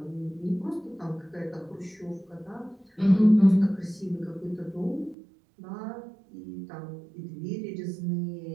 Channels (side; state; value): left; drops out; at 5.2 s